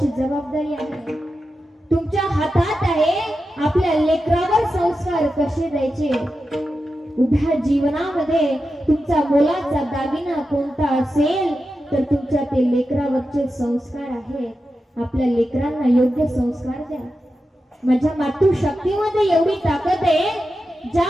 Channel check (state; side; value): normal; both; correlation 0.90